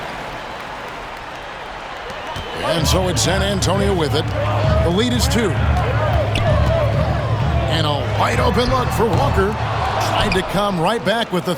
And so it's San Antonio with it. The lead is 2. And a wide open look for Walker. Tried to come right back with the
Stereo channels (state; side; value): identical; both; correlation 1.00